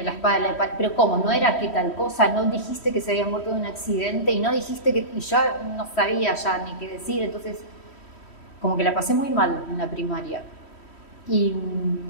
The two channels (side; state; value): right; late; 3.1 ms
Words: la espada y la pared, pero ¿cómo? ¿No era que tal cosa? ¿No dijiste que se había muerto de un accidente? Y no dijiste que... Y yo no sabía ya ni qué decir, entonces como que la pasé muy mal en la primaria. Y